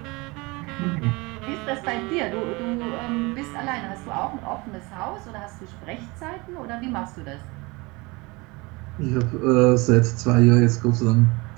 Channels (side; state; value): left; quieter; 25.1 dB